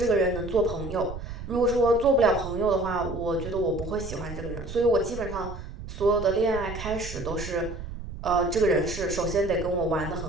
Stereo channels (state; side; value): noise; right; rumble, 10 dB below the sound